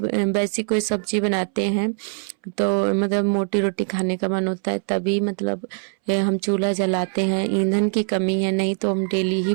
वैसी कोई सब्जी बनाते हैं तो मतलब मोटी रोटी खाने का मन होता है तभी मतलब हम चूल्हा जलाते हैं। ईंधन की कमी है, नहीं तो हम डेली ही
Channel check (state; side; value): silent; left; 64 dB below the other